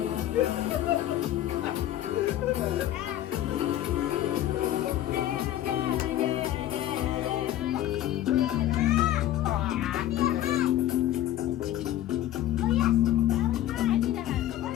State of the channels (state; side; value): quieter; right; 12.8 dB